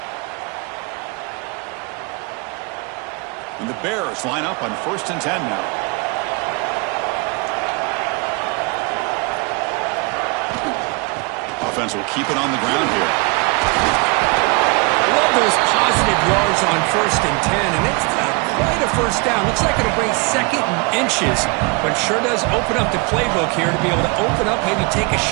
And the Bears line up on 1st and 10 now. Offense will keep it on the ground here. Love those positive yards on 1st and 10, and it's not quite a 1st down. Looks like it'll bring 2nd and inches, but sure does open up the playbook here to be able to open up, maybe take a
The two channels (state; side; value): quieter; left; 29.9 dB